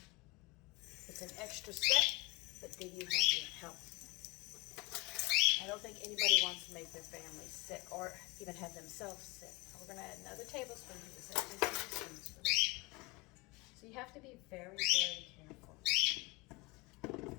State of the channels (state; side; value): quieter; right; 24.1 dB